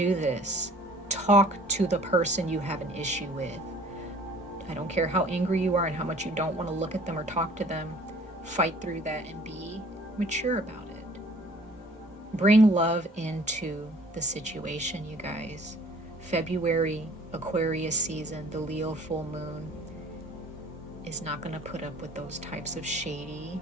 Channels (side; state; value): both; normal; correlation 0.53